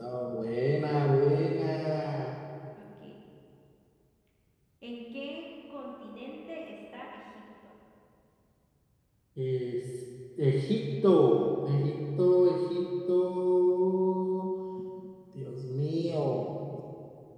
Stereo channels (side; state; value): both; identical; correlation 1.00